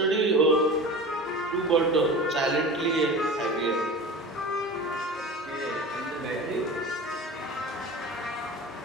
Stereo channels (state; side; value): normal; both; correlation 0.34